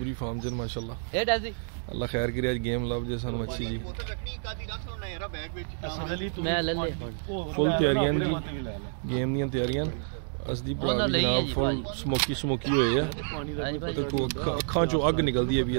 फार्म जन माशाल्लाह। अल्लाह खैर करे, आज गेम लव जे सानू अच्छी जी। फुल तैयारियां जी, गेम दी तैयारियां। असदी भरा भी जनाब फुल स्मोकी स्मोकी होए है। देखो अखां चो अग निकलदी है भी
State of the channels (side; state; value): left; silent; digital silence